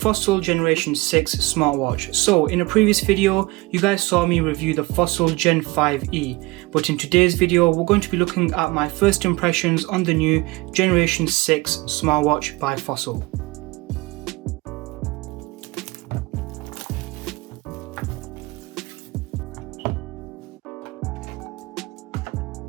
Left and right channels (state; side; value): quieter; left; 22.7 dB